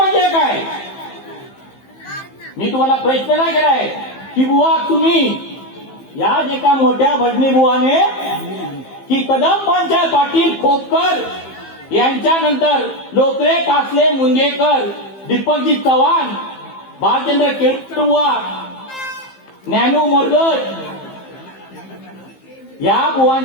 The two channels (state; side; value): late; right; 15 ms